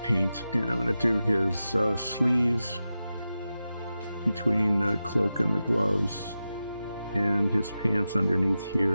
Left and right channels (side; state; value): both; inverted; correlation -0.92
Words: paint, and I'm going to do his sleeves between the cloak and the gloves, and his pants underneath